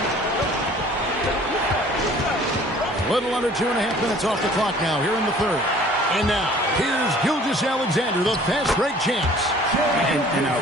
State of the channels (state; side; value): normal; both; correlation 0.51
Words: Little under 2.5 minutes off the clock now here in the third. And now, here's Gilgeous-Alexander, the fast break champs. An